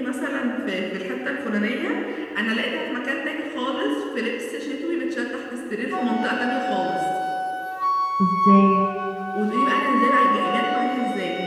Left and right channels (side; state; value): both; identical; correlation 1.00